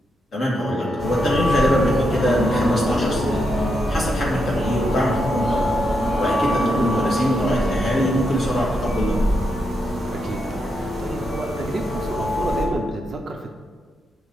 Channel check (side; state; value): both; normal; correlation 0.82